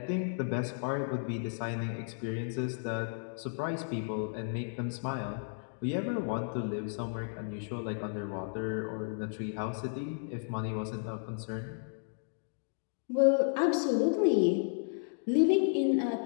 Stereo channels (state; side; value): silent; right; digital silence